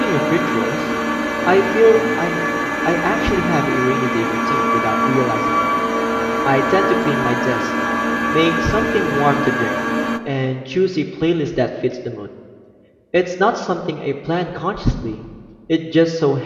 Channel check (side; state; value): both; identical; correlation 1.00